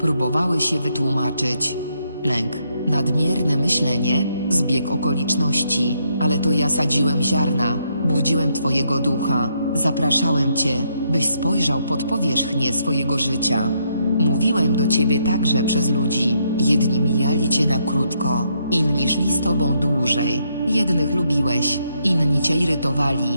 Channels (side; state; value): both; inverted; correlation -0.75